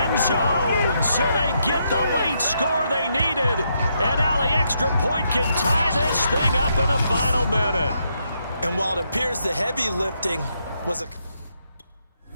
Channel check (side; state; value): both; inverted; correlation -0.78